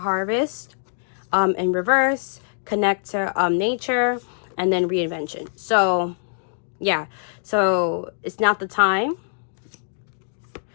in reverse, connect to nature, and then reinvention. So Yeah, so it's not the time.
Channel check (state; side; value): silent; right; digital silence